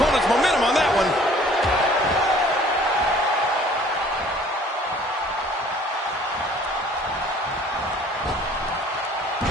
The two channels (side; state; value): both; normal; correlation 0.54